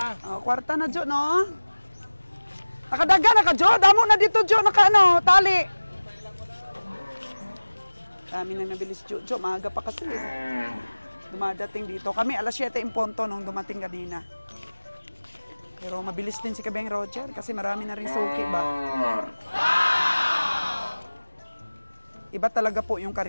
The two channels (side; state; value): both; inverted; correlation -1.00